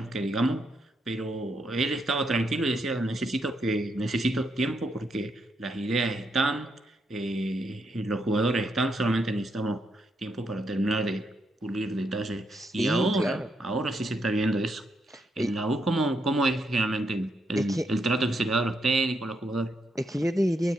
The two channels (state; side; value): normal; both; correlation 0.79